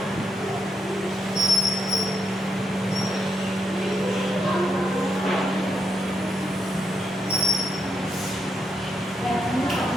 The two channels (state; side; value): normal; both; correlation 0.80